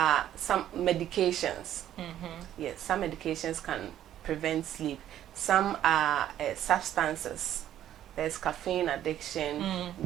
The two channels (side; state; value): left; quieter; 11.6 dB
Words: some medications. Yes, some medications can prevent sleep. Some are substances. There's caffeine addiction,